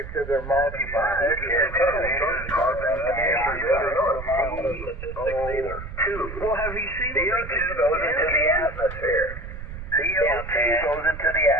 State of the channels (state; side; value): noise; right; rumble, 10 dB below the sound